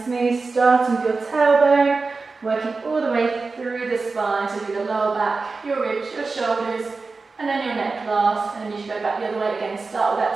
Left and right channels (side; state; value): left; quieter; 4.0 dB